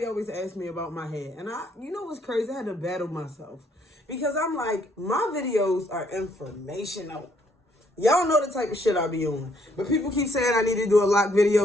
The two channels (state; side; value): normal; both; correlation 0.68